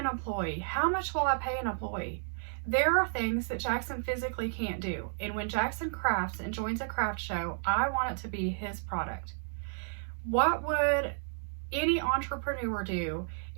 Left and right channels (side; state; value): left; silent; 56 dB below the other